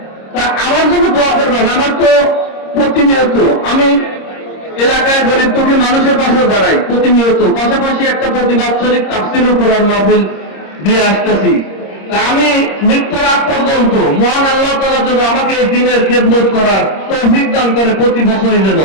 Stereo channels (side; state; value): right; late; 26 ms